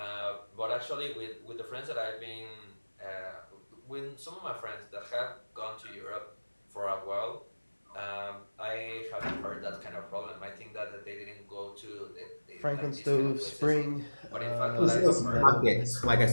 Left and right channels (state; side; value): inverted; both; correlation -1.00